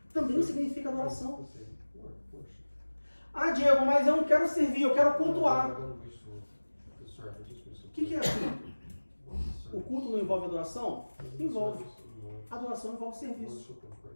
também significa adoração. Ah, Diego, mas eu não quero servir, eu quero cultuar. O que é culto? O culto não envolve adoração? Envolve. Adoração envolve serviço.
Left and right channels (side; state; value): both; inverted; correlation -1.00